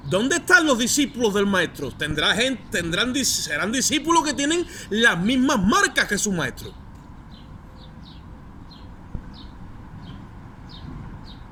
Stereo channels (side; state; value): both; identical; correlation 1.00